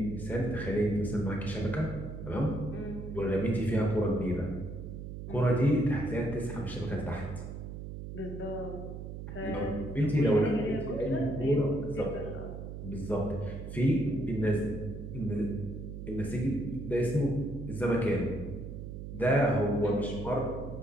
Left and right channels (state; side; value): noise; right; hum, 8 dB below the sound